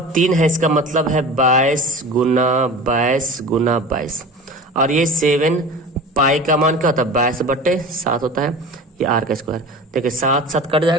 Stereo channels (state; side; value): normal; both; correlation 0.35